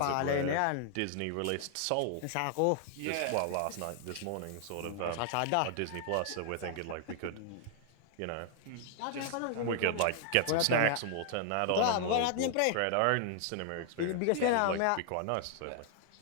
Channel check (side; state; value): both; different; correlation 0.00